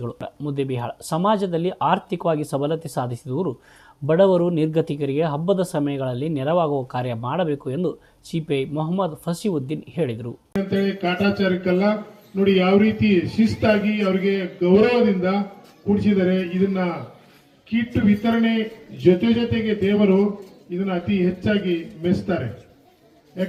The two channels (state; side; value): identical; both; correlation 1.00